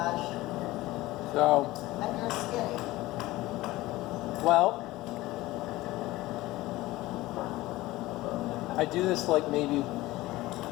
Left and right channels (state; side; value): quieter; right; 18.3 dB